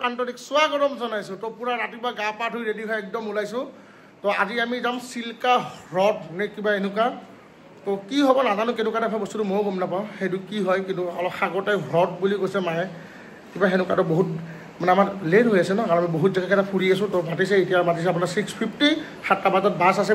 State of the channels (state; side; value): identical; both; correlation 1.00